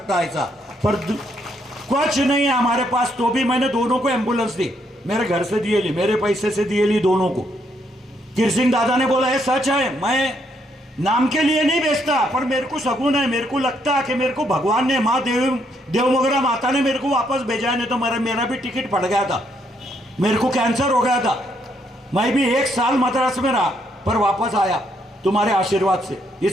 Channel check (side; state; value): both; normal; correlation 0.73